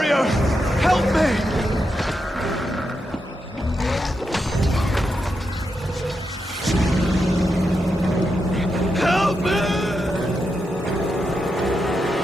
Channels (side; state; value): both; normal; correlation 0.85